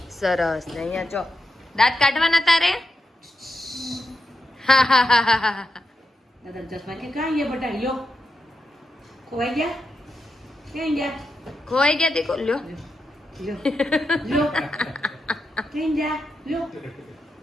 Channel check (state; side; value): normal; both; correlation 0.86